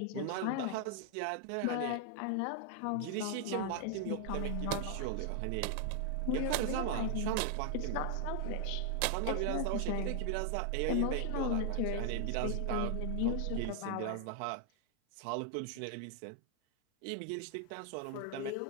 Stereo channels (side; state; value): both; different; correlation 0.00